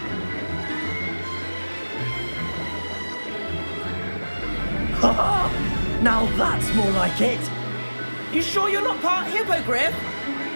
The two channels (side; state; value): both; inverted; correlation -1.00